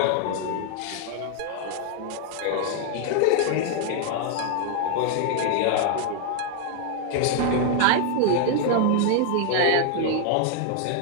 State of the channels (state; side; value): different; both; correlation 0.00